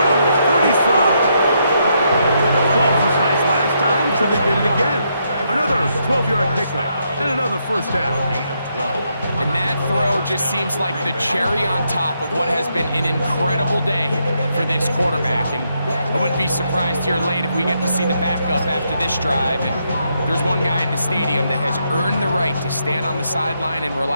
the 35. 12 was nice last time, so they did it again. Another 12-yard pickup and another first down. And that throw just seems like the cherry on top of what has been an incredible day for this quarterback. And I wouldn't be surprised here late if we get to see the backup after this drive. And there's one guy in the stadium that has earned the right to stand on the sideline and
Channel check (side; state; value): both; inverted; correlation -0.78